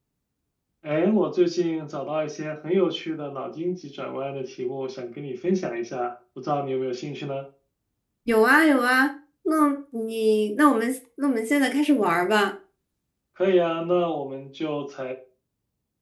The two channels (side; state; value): both; identical; correlation 1.00